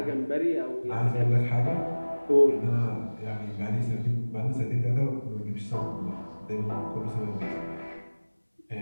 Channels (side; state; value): both; inverted; correlation -1.00